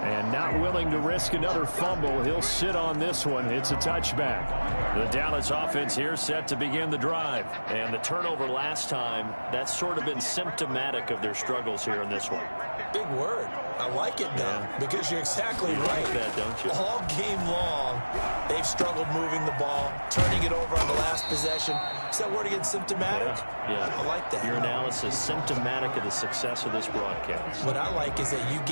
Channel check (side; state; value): both; inverted; correlation -1.00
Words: And not willing to risk another fumble. He'll sit on this one. It's a touchback. The Dallas offense here set to begin the drive. And the turnover last time, that's sort of been symptomatic of their struggles here in this one. Big word. I like it, though, because you're exactly right. Like that, don't you? All game long, they've struggled moving the ball, turning it over on the last possession. Is that word again, symptomatic? Yeah. I like that. Your analysis, symptomatic of the success of this broadcast. What I like is that you